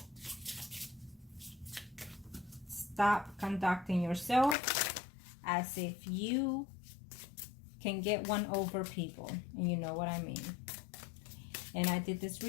Stop conducting yourself as if you can get one over people. And you know what I mean. And I did this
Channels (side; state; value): right; drops out; at 4.5 s